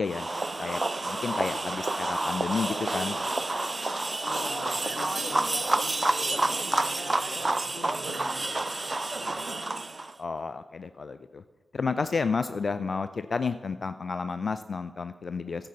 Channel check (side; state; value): both; normal; correlation 0.92